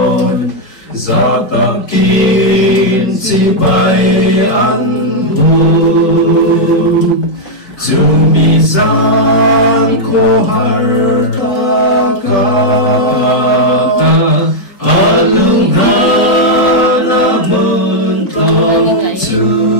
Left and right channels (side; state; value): right; late; 4.7 ms